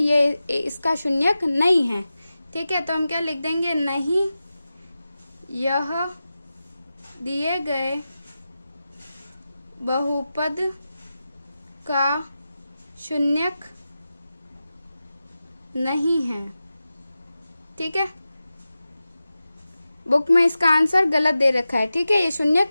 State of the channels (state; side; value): inverted; both; correlation -0.93